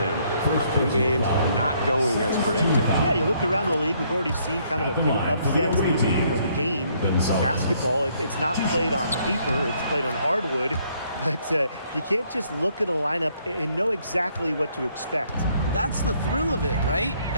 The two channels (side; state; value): both; inverted; correlation -0.67